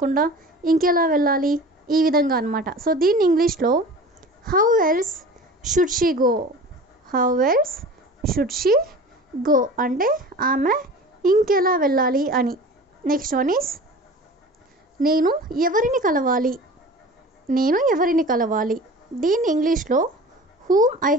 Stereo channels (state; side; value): normal; both; correlation 0.39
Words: ఇంకెలా వెళ్ళాలి, ఈ విధంగా అనమాట. సో దీన్ని ఇంగ్లీష్లో how else should she go. How else should she go అంటే ఆమె ఇంకెలా వెళ్ళాలి అని. నెక్స్ట్ వన్ ఈస్ నేను ఎవరిని కలవాలి. నేను ఎవరిని కలవాలి దీన్ని ఇంగ్లీష్లో whom I